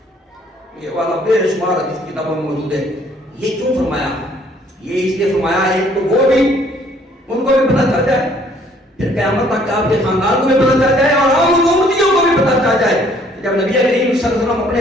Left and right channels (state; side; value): normal; both; correlation 0.61